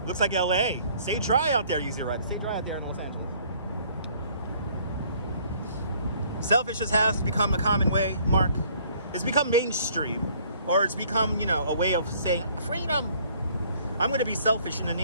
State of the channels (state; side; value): inverted; both; correlation -0.59